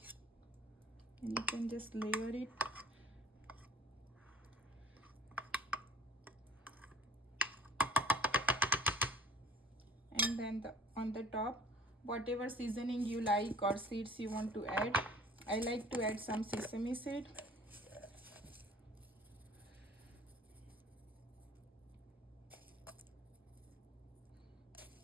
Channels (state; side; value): normal; both; correlation 0.50